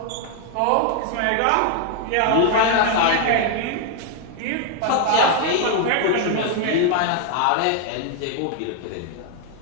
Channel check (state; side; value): different; both; correlation 0.00